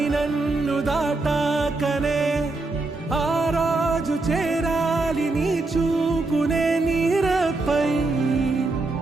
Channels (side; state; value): left; quieter; 3.2 dB